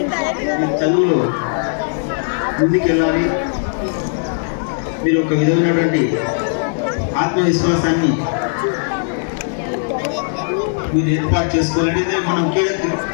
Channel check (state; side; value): silent; right; digital silence